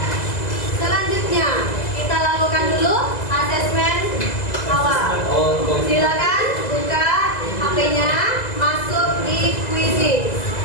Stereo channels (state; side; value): late; right; 2.0 ms